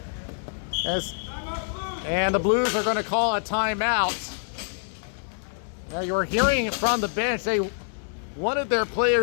And the Blues are going to call a timeout. Now you're hearing from the bench, they wanted their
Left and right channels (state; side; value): silent; right; digital silence